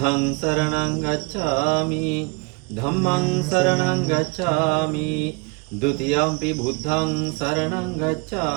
සරණං ගච්ඡාමි ධම්මං සරණං ගච්ඡාමි ဒုတိယံ පි බුද්ධං සරණං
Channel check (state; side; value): quieter; left; 30.2 dB